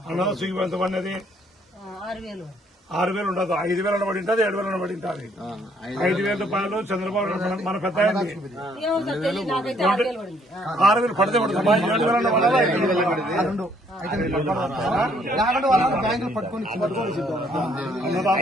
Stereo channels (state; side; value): normal; both; correlation 0.66